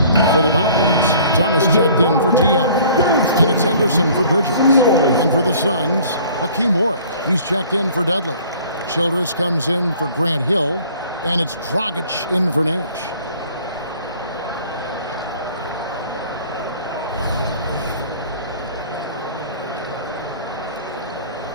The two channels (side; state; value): both; inverted; correlation -0.52